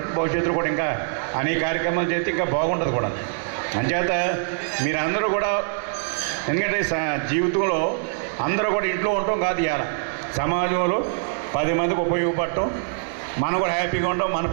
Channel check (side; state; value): left; silent; 63 dB below the other